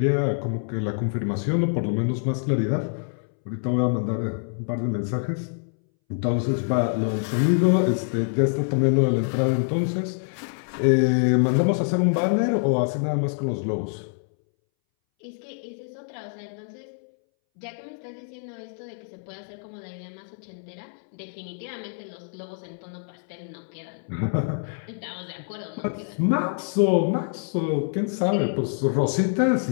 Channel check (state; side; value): silent; right; 61 dB below the other